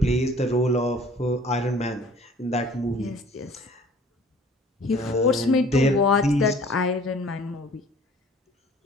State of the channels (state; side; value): normal; both; correlation 0.51